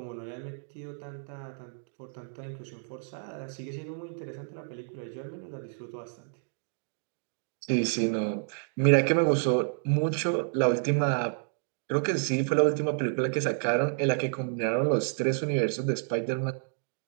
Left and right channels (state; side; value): silent; left; digital silence